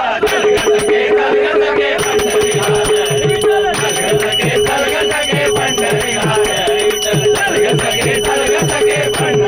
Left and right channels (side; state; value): both; identical; correlation 1.00